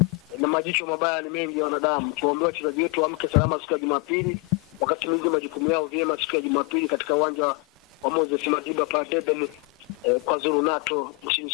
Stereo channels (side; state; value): right; quieter; 30.0 dB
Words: na majicho mabaya ni mengi ya wanadamu. Tuombe wachezaji wetu waamke salama siku ya Jumapili, wakati mwingi majukumu yao vyema siku ya Jumapili katika uwanja wa Moses Madiba pale Durban kwa Zulu Nato nchini